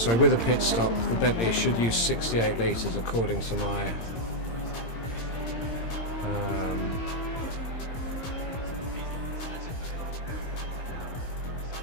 a pit stop, the Bentley should use 68 litres according to my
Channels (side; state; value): right; late; 17 ms